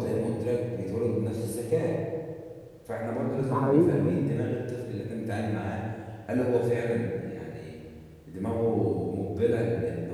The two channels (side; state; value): both; identical; correlation 1.00